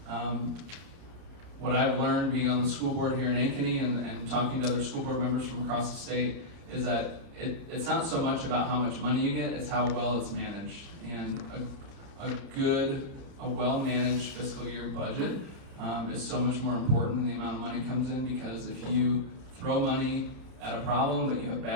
what I've learned being on the school board here in Ankeny and talking to other school board members from across the state is that it's not so much about how much money you get, it's how well it's managed. And a well-managed fiscal year budget is so much more important than the amount of money comes in, because if you throw money at a problem but you have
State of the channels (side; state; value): left; late; 30 ms